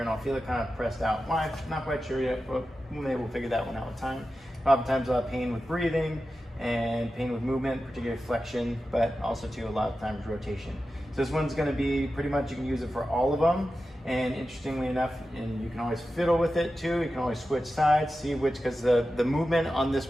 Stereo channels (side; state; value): both; normal; correlation 0.92